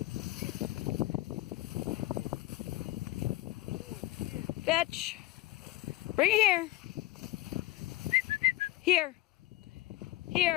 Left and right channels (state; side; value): quieter; right; 18.0 dB